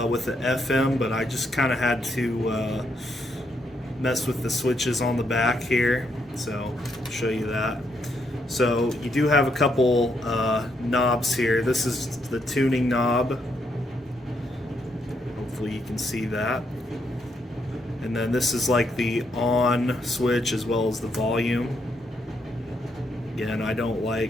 with the FM, but I just kind of had to mess with the switches on the back here. So I'll show you that. So you do have a couple knobs here. This is the tuning knob. Hopefully you can see that. And then this is like the on switch as well as the volume. Again, I don't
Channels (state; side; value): normal; both; correlation 0.76